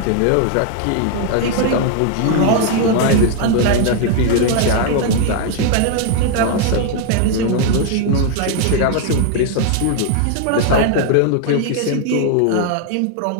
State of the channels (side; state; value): both; different; correlation 0.00